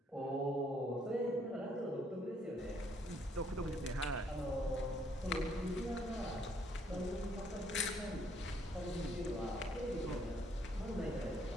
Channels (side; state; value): both; normal; correlation 0.68